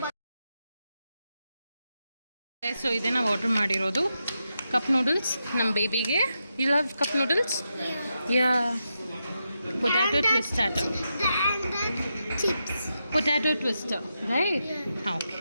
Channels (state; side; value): inverted; both; correlation -0.86